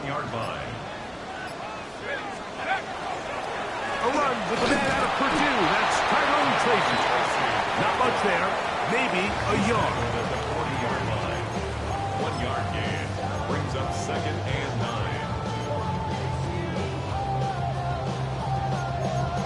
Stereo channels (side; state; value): both; identical; correlation 1.00